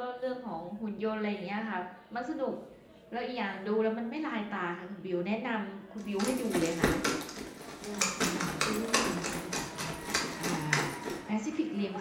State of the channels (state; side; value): identical; both; correlation 1.00